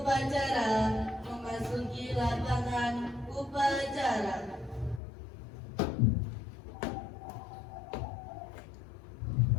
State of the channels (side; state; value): right; drops out; at 5.0 s